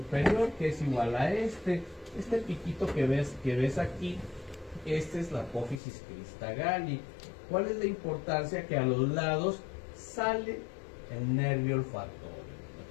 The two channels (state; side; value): drops out; right; at 5.8 s